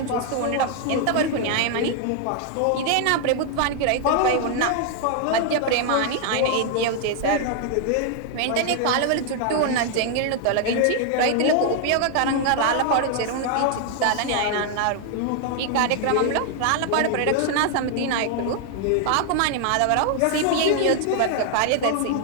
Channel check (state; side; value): different; both; correlation 0.00